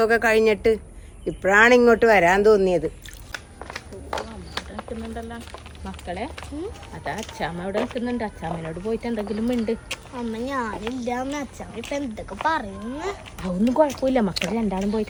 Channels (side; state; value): both; identical; correlation 1.00